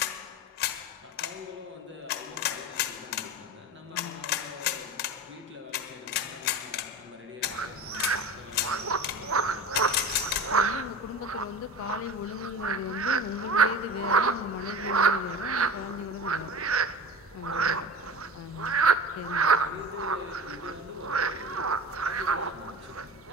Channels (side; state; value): both; normal; correlation 0.33